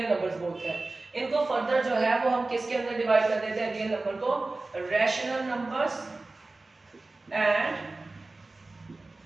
नंबर्स बोलते हैं। इनको फर्दर जो है वो हम किसके अंदर डिवाइड कर देते हैं, रियल नंबर को rational numbers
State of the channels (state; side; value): quieter; left; 3.2 dB